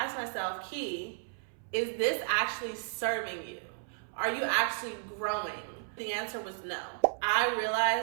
myself, Key, is this actually serving you? Are you actually growing? The answer was no. I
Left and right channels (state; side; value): silent; left; 56 dB below the other